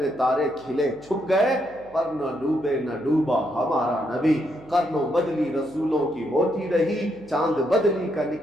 تارے کھلے چھپ گئے پر نہ ڈوبے نہ ڈوبا ہمارا نبی، قرنوں بدلی رسولوں کی ہوتی رہی، چاند بدلی کا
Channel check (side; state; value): right; noise; hum, 25 dB below the sound